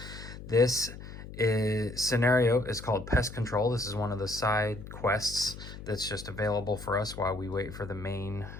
this scenario is called Pest Control. This is one of the side quests that's just available for us while we wait for the main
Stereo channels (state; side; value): noise; left; hum, 13 dB below the sound